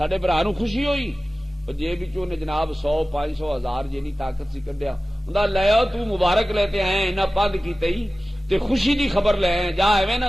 برا نوں خوشی ہوئی، جیب وچوں نے جناب 100 500 1000 جنی طاقت سی کڈیا، ہوندا لے آؤ تو مبارک لیتے آئے انہاں پند کیتے ہی تے خوشی دی خبر لے آئے، جا ایویں نہ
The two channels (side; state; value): both; normal; correlation 0.96